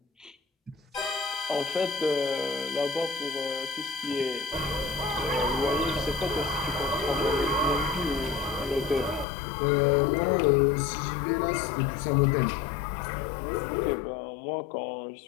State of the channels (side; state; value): right; drops out; at 9.2 s